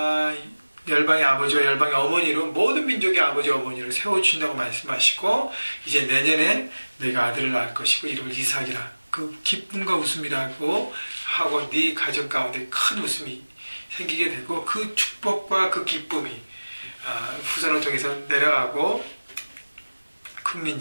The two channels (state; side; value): inverted; both; correlation -1.00